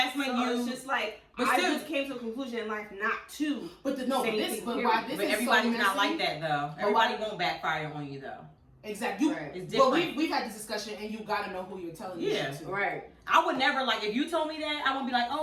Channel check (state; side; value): identical; both; correlation 1.00